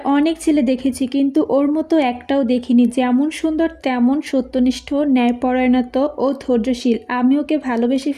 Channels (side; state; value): both; identical; correlation 1.00